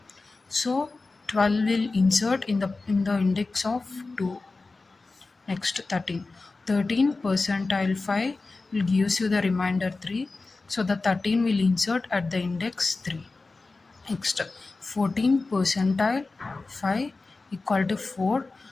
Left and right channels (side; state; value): right; quieter; 3.6 dB